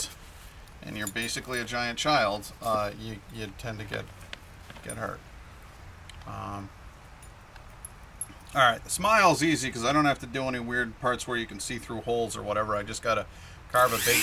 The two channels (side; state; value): both; identical; correlation 1.00